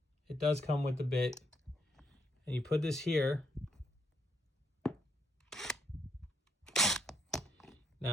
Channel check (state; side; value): normal; both; correlation 0.74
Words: It does come with the bit. And you put this here.